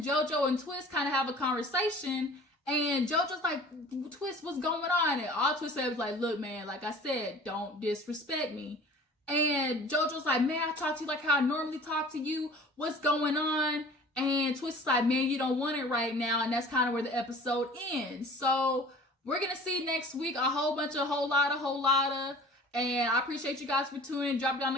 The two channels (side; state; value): both; normal; correlation 0.45